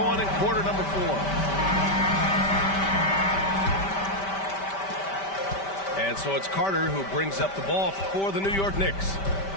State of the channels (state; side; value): late; right; 5.1 ms